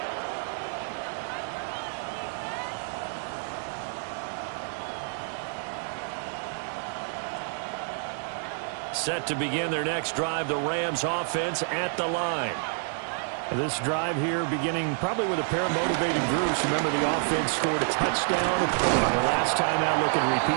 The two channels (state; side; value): silent; left; 58 dB below the other